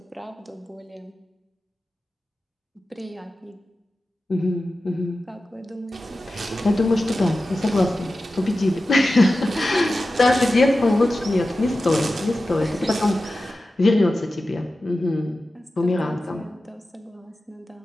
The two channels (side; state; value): both; normal; correlation 0.94